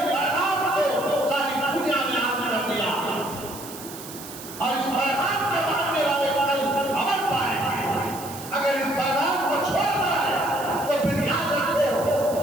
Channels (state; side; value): noise; right; hiss, 13 dB below the sound